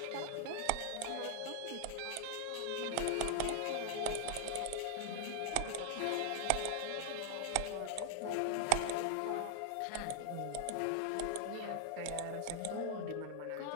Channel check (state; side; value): different; both; correlation 0.00